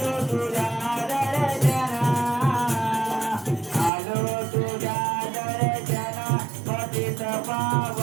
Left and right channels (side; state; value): left; drops out; at 3.9 s